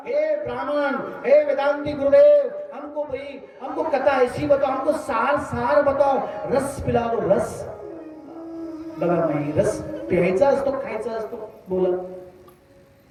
हे ब्राह्मण, हे वेदांती गुरुदेव, हमको कथा ऐसी बताओ, हमको सार सार बताओ, रस पिला दो, रस. बघा नाही, रस प्यायचा असतो, खायचा असतो. बोला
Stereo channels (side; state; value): both; identical; correlation 1.00